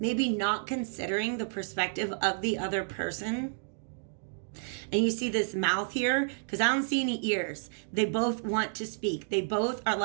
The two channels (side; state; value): left; silent; digital silence